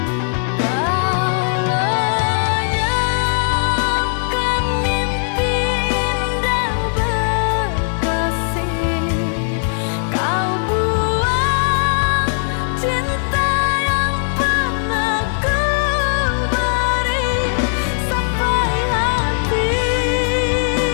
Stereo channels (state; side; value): silent; right; digital silence